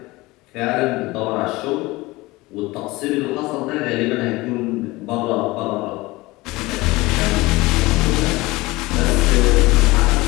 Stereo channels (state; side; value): quieter; right; 21.1 dB